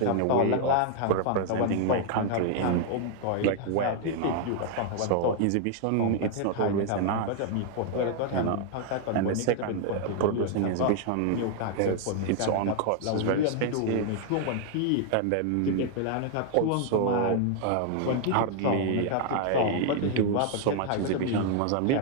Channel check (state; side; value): different; both; correlation 0.00